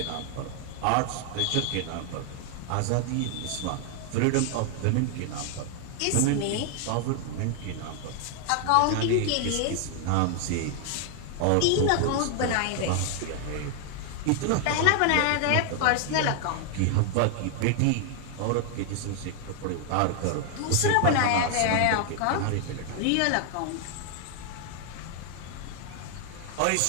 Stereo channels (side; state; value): both; different; correlation 0.00